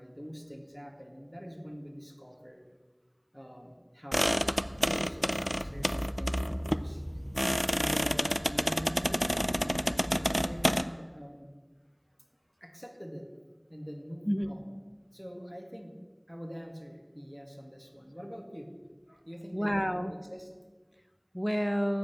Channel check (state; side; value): identical; both; correlation 1.00